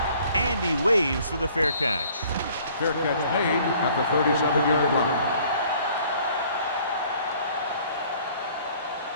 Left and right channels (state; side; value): inverted; both; correlation -0.56